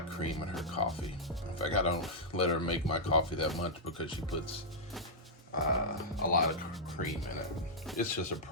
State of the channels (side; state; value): both; normal; correlation -0.08